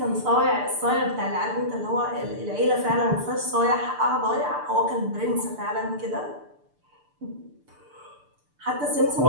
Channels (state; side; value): late; left; 6.8 ms